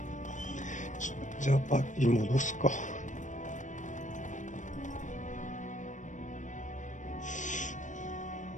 じゃあパーティー戻すか。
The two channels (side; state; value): right; late; 0.36 ms